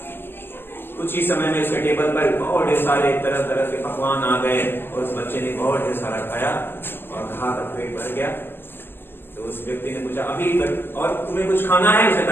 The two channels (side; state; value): right; late; 0.10 ms